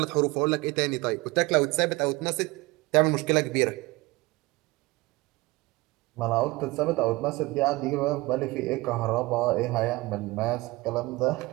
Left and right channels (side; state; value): left; quieter; 21.9 dB